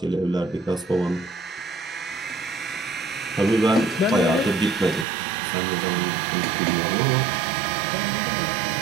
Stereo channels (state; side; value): drops out; left; at 5.1 s